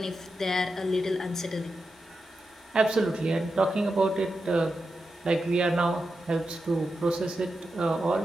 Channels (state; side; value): normal; both; correlation 0.89